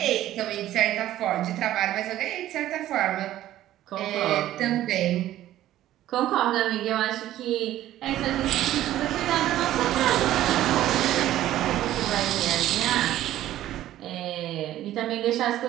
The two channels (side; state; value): left; quieter; 13.6 dB